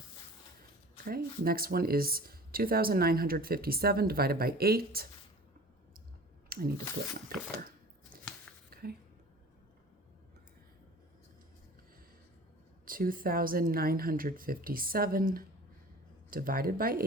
Okay, next one is 2,957 divided by 8. I need to flip my paper. Okay. 2,957 divided by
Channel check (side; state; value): both; normal; correlation 0.43